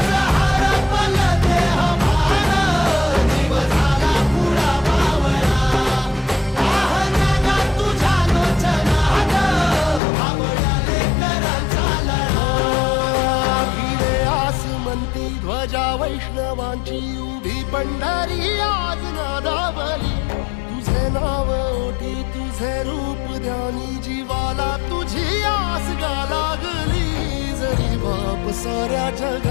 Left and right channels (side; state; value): right; drops out; at 10.0 s